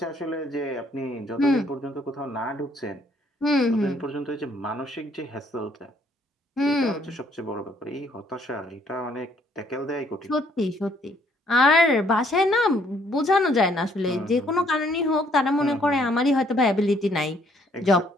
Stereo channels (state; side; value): normal; both; correlation 0.66